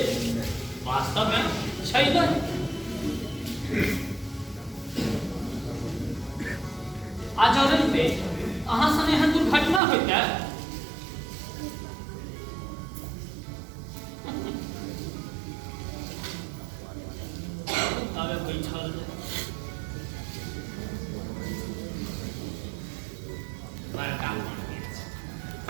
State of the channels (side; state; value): left; drops out; at 9.8 s